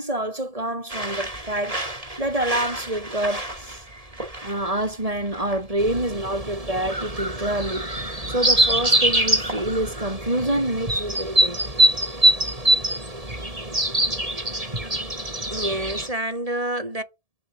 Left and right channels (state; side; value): late; left; 1.7 ms